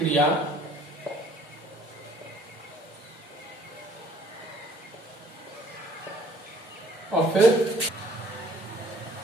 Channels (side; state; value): both; normal; correlation 0.57